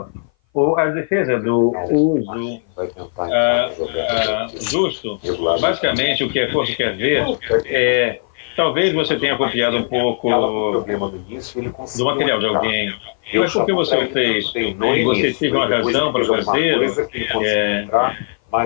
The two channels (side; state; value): right; silent; 58 dB below the other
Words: a defesa do uso justo, basicamente o que a corte quer ver é, talvez você tenha copiado um pouco do material de alguém, mas por que você o fez? E você teve uma razão para fazer?